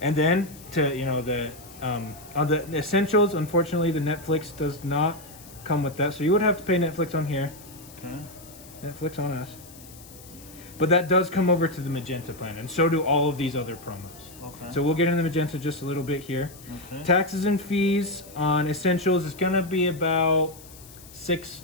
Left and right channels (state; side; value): noise; left; hiss, 20 dB below the sound